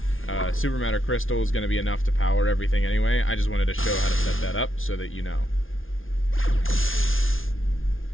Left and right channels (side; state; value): right; late; 0.59 ms